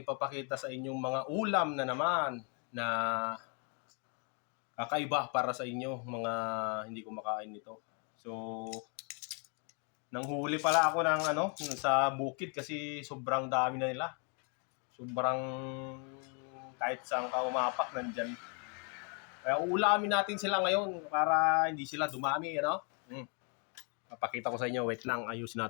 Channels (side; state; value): right; quieter; 38.1 dB